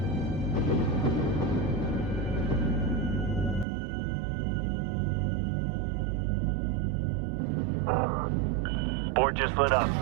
Board just lit up.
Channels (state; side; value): drops out; left; at 3.7 s